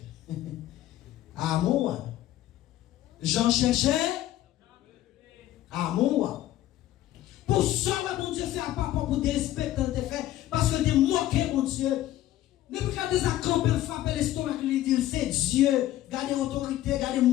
Ah, moi. J'en cherchais. Ah, moi. Pour ça, mon Dieu, fait à papa pour dérespecter quand tu fait, parce que tu moqué, mon Dieu. Ne pas garder ça camper, frapper l'estomac, lui dire c'est Dieu, garder l'autorité, garder le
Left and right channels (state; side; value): quieter; right; 13.9 dB